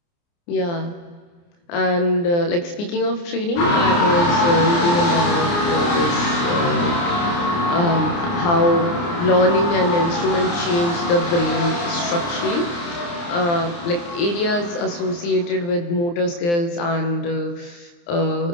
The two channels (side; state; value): right; late; 29 ms